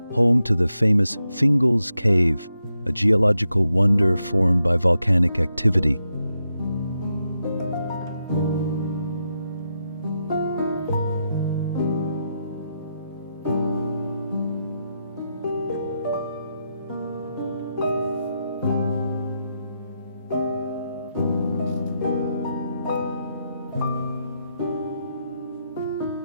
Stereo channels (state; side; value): inverted; both; correlation -0.84